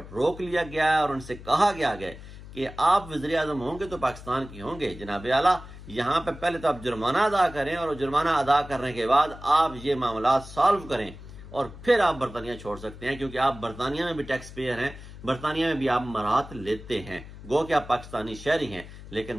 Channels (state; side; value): noise; left; hum, 15 dB below the sound